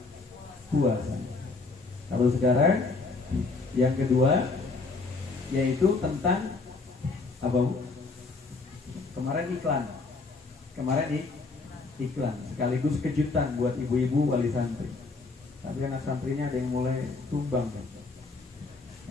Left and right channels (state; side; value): quieter; right; 3.9 dB